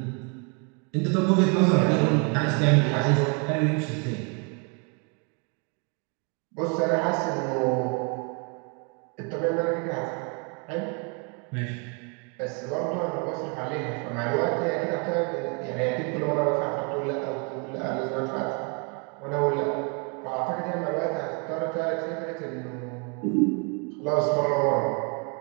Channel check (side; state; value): left; quieter; 34.7 dB